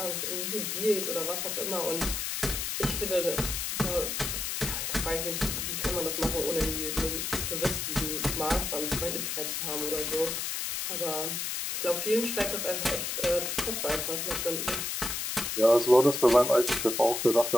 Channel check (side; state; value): left; noise; hiss, 2 dB below the sound